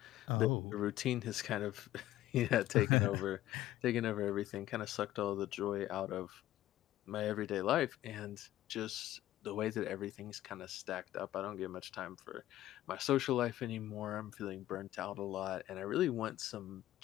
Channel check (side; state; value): right; quieter; 14.3 dB